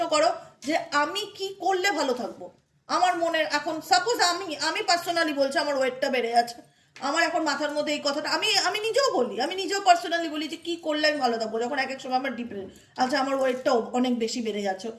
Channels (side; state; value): both; identical; correlation 1.00